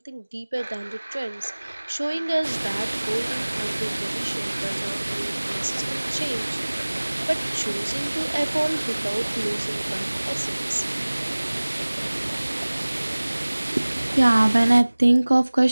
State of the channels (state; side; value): inverted; both; correlation -1.00